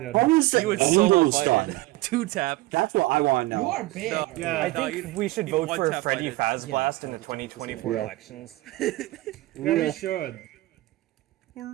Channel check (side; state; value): left; quieter; 19.5 dB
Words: How is the He would solo angles fight done? it. Two tap. That's what I want to You know. are big. No, Yeah. I no, think you- we should you vote for one-tap Freddy fight it. Faz Yeah, Blast in the that's 2024 Yeah. elections. Real. should.